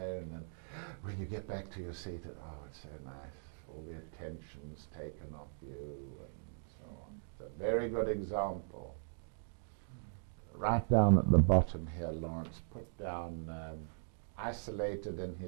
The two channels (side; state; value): left; silent; digital silence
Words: and when you get back to your seat, it's so nice. All the attention's taken off you, and so on. It's a very good example. Right down at the bottom here, Lawrence, put down isolated in